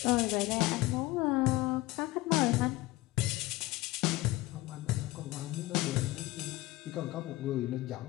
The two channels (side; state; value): right; quieter; 19.3 dB